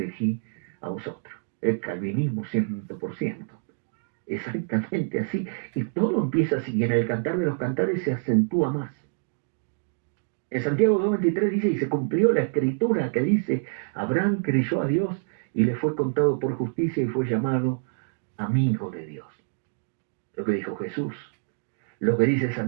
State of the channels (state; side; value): silent; left; digital silence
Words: a vosotros. El calvinismo 100%. Exactamente así. Y todo empieza así, y en el Cantar de los Cantares se acentúa más. En Santiago 2:23 dice, y se cumplió la escritura que dice, Abraham creyó a Dios y le fue contado por justicia y fue llamado amigo de Dios. Lo que dijo Jesús. Lo que dice